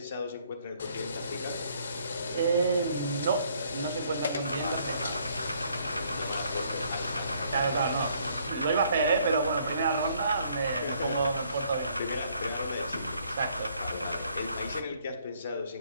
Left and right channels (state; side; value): inverted; both; correlation -0.66